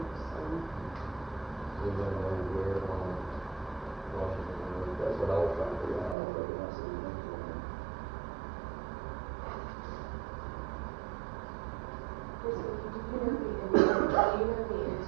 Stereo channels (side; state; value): left; drops out; at 6.2 s